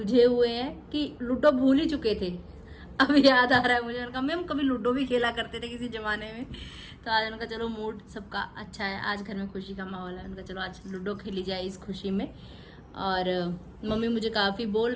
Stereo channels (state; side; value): identical; both; correlation 1.00